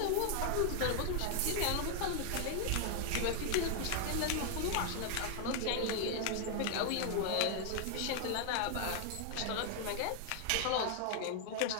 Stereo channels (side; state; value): both; different; correlation 0.00